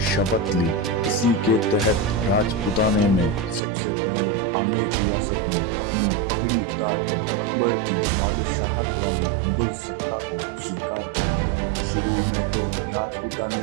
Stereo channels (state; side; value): drops out; left; at 3.6 s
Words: शपथ ली। इसी के तहत राजपूताने में सबसे पहले आमेर रियासत में अपनी पगड़ी उतारकर अकबर की बादशाहत वाली मुगल सत्ता को स्वीकार कर लिया। शुरू में तो